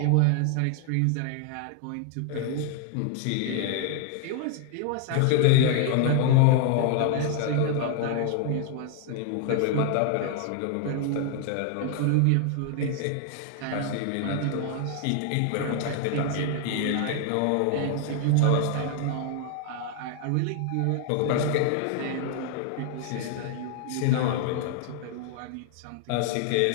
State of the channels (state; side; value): different; both; correlation 0.00